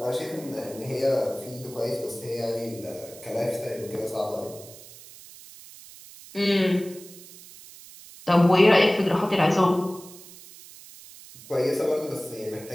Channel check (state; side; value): noise; right; hiss, 18 dB below the sound